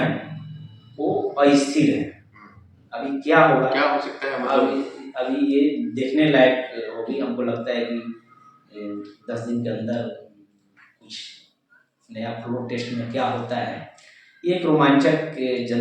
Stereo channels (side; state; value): both; identical; correlation 1.00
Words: वो अस्थिर है। अभी क्या होगा, क्या हो सकता है, मतलब अभी ये देखने लायक होगी। हमको लगता है कि 10 दिन के अंदर कुछ नया फ्लोर टेस्ट में क्या होता है, ये एक रोमांचक